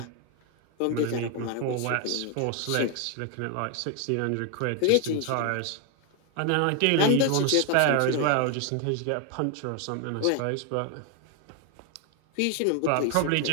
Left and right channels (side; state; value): both; different; correlation 0.01